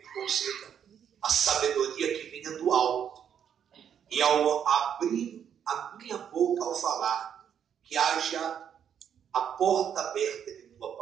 conceda a sabedoria que venha do alto, e ao abrir a minha boca ao falar, que haja a porta aberta de tua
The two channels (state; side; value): quieter; left; 8.6 dB